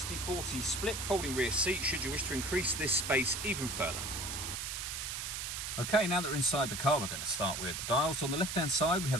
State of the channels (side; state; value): right; noise; hiss, 4 dB below the sound